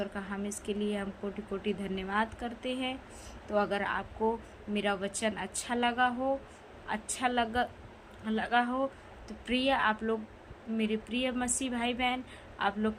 का हम इसके लिए हम कोटि कोटि धन्यवाद करते हैं। तो अगर आपको मेरा वचन अच्छा लगा हो तो प्रिय आप लोग, मेरे प्रिय मसीह भाई बहन, आप लोग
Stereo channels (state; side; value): identical; both; correlation 1.00